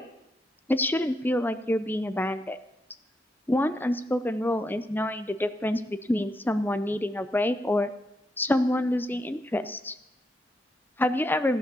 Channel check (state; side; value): normal; both; correlation 0.81